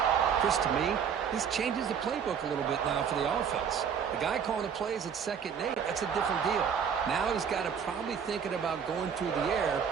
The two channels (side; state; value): left; quieter; 7.4 dB